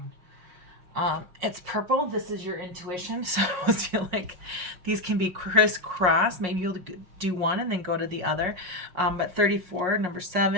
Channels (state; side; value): late; left; 5.5 ms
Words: It's purple. This is your intuition. So I feel like these can be crisscross. Maybe you'll do one and then go to the other. But 34, number